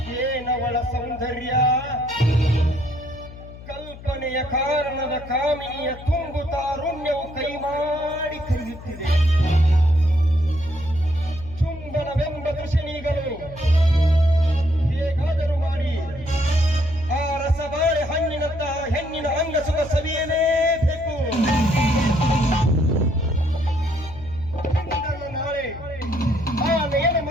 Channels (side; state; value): left; noise; hum, 16 dB below the sound